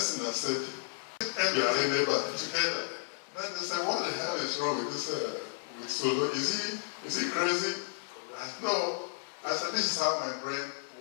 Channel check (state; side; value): silent; right; 56 dB below the other